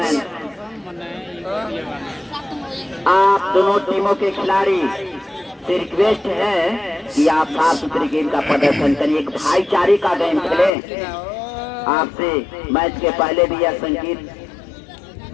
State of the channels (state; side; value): drops out; right; at 10.7 s